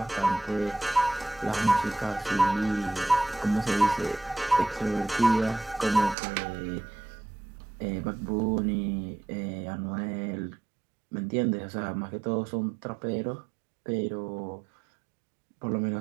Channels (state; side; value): drops out; left; at 6.2 s